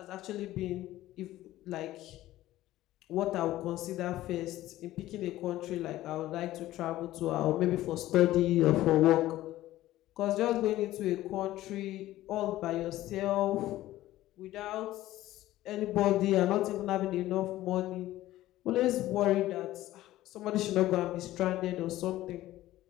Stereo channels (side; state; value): right; quieter; 15.3 dB